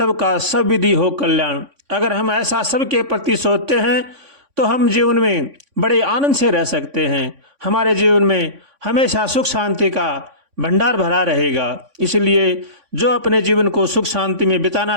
सब विधि हो कल्याण। अगर हम ऐसा सबके प्रति सोचते हैं तो हम जीवन में बड़े आनंद से रह सकते हैं। हमारे जीवन में हमेशा सुख शांति का भंडार भरा रहेगा। इसलिए जो अपने जीवन को सुख शांति में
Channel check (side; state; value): left; late; 3.5 ms